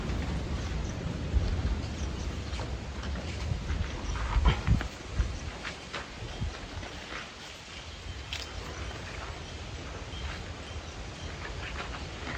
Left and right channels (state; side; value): identical; both; correlation 1.00